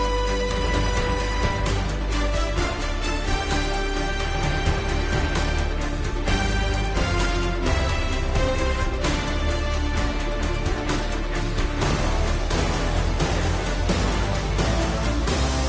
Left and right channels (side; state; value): both; identical; correlation 1.00